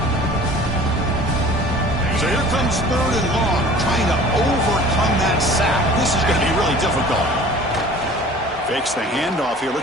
So here comes 3rd and long, trying to overcome that sack. This is going to be really difficult. Fakes the handoff here,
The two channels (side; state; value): both; normal; correlation 0.46